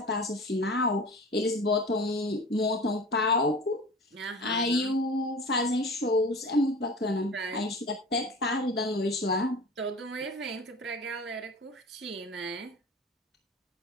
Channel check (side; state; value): both; normal; correlation 0.37